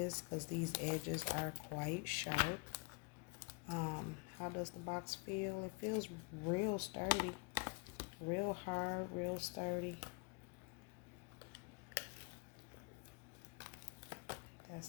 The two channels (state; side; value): quieter; right; 30.6 dB